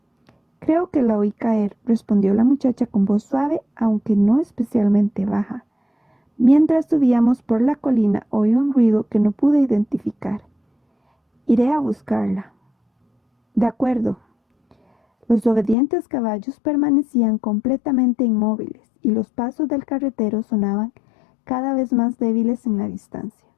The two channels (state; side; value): drops out; right; at 15.8 s